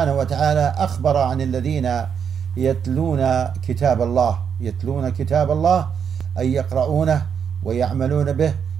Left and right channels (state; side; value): quieter; left; 7.4 dB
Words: وتعالى أخبر عن الذين يتلون كتاب الله أي يقرؤونه ويعملون به